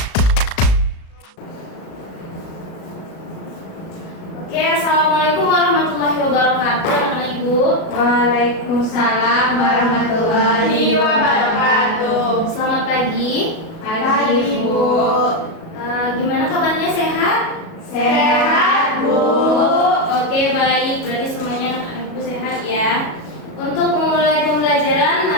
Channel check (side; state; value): right; late; 37 ms